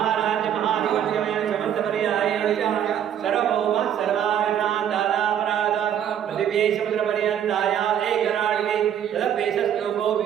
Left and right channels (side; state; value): left; quieter; 9.6 dB